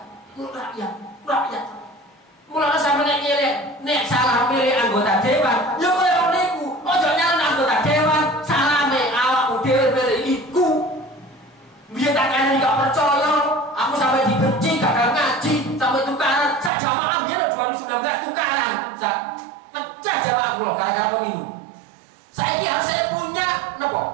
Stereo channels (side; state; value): left; drops out; at 16.7 s